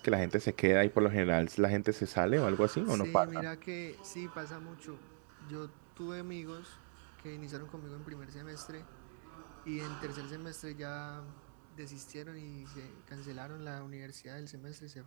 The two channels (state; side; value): silent; left; digital silence